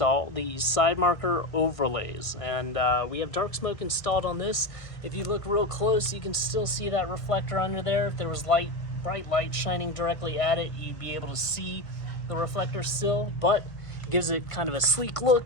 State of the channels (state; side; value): late; right; 1.6 ms